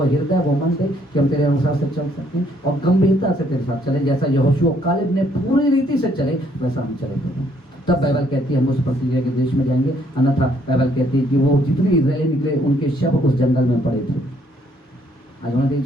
हृदय, वो मन दे कि हम तेरे अनुसार से चल सकें और गंभीरता से तेरे साथ चले, जैसा यहोशू कालेब ने पूरी रीति से चले वैसा हम चले प्रभु। तब बाइबल कहती है हम उस प्रतिज्ञा के देश में जाएंगे। अन्यथा बाइबल कहती है कि वो जितने इजरायली निकले उनके शव उस जंगल में पड़े थे। आज उन्होंने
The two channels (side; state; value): both; normal; correlation 0.67